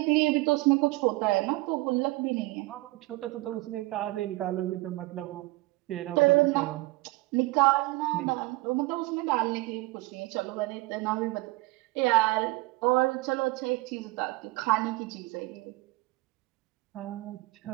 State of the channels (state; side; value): quieter; left; 21.6 dB